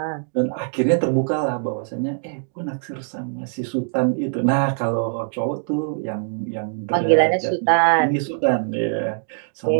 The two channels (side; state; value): left; silent; digital silence